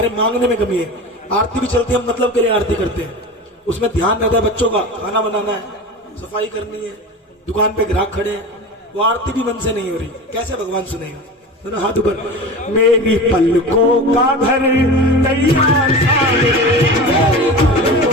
मांगने में कमी है। आरती भी चलती है, हम मतलब के लिए आरती करते हैं, उसमें ध्यान रहता है बच्चों का, खाना बनाना है, सफाई करनी है, दुकान पे ग्राहक खड़े हैं, वो आरती भी मन से नहीं हो रही, कैसे भगवान सुनेगा? तो ना हाथ ऊपर। मेरी पलकों का घर तैयार सारे, मेरी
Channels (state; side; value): normal; both; correlation 0.31